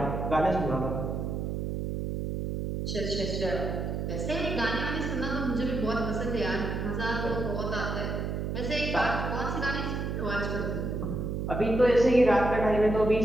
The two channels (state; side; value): noise; right; hum, 2 dB below the sound